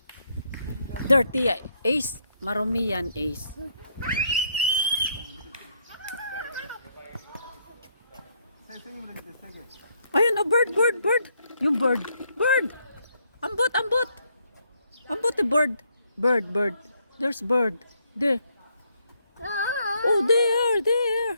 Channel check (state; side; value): inverted; both; correlation -0.73